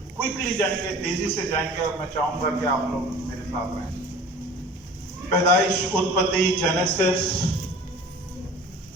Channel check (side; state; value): both; normal; correlation 0.43